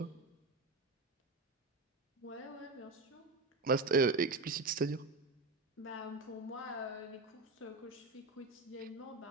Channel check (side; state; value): left; quieter; 3.4 dB